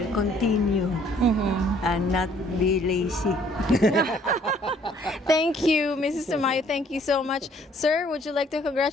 continue and not be lazy. Thank you, Mrs. Tamayo. Thank you so much. Sir, would you like to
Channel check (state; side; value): normal; both; correlation 0.61